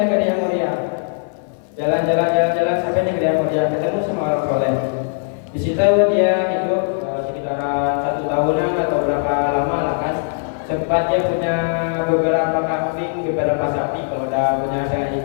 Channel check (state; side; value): silent; right; 56 dB below the other